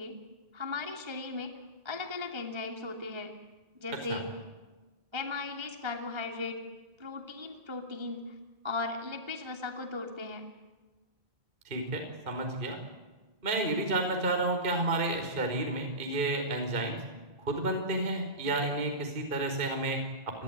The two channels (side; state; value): left; late; 2.5 ms